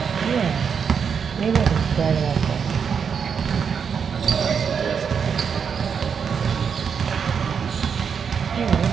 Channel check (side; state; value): left; quieter; 6.7 dB